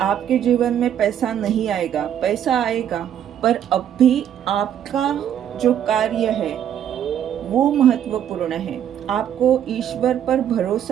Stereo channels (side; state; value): left; quieter; 9.9 dB